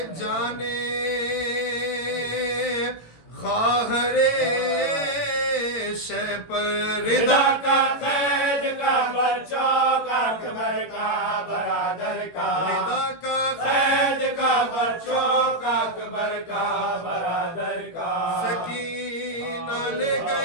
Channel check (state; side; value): late; right; 18 ms